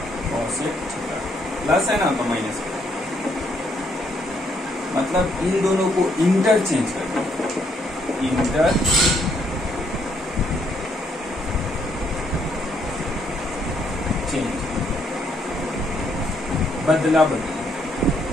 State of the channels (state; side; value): normal; both; correlation 0.72